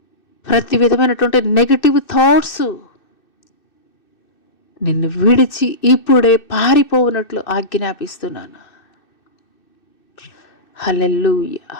నిన్ను విడిచి ఇప్పుడే పారిపోవునట్లు ఆజ్ఞాపిస్తున్నాను. హల్లెలూయా,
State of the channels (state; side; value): late; right; 2.6 ms